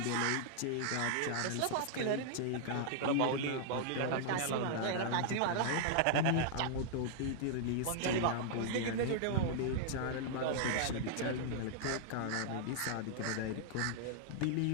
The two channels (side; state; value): both; different; correlation -0.01